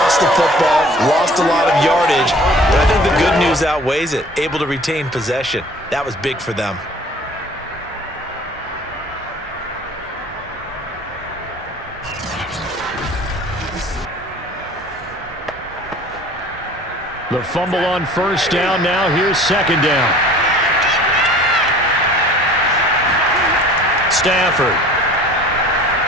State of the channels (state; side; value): normal; both; correlation 0.48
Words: the football, lost a lot of yardage, but I think the good news outweighs it. Able to retain possession. That was big for them. The fumble on first down. Now here's 2nd down. Stafford.